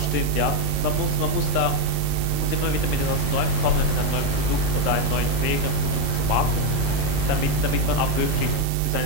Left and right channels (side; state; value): both; different; correlation 0.04